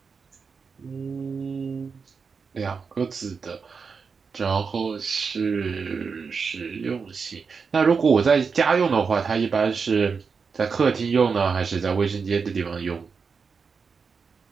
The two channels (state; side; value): quieter; left; 5.4 dB